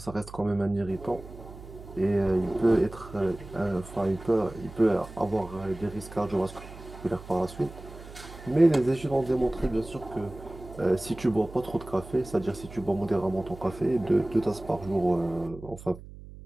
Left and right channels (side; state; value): right; noise; hum, 16 dB below the sound